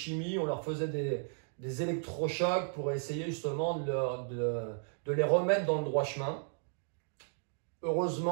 on leur faisait des électrochocs pour essayer justement de les remettre dans le droit chemin.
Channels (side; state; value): left; silent; digital silence